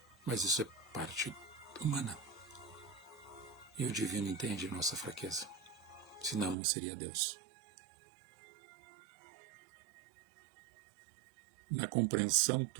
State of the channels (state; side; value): drops out; left; at 6.6 s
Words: Mas isso é parte humana. E o divino entende a nossa fraqueza. Senão não seria Deus. Na compreensão